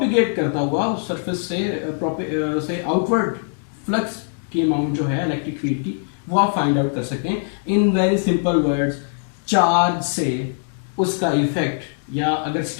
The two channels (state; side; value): silent; right; digital silence